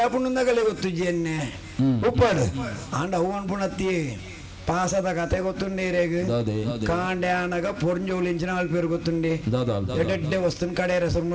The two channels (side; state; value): both; identical; correlation 1.00